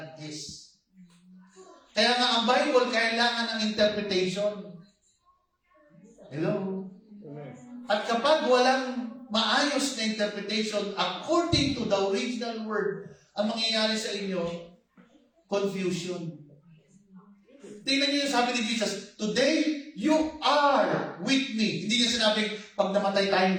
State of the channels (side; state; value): both; identical; correlation 1.00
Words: is. Kaya nga ang Bible kailangan ng interpretation. Hello? At kapag walang maayos na interpretation according to the original word, ang mangyayari sa inyo, confusion. Tingnan niyo yung sabi ni Jesus, today, you are with me. Hindi niya sinabing, pag namatay tayong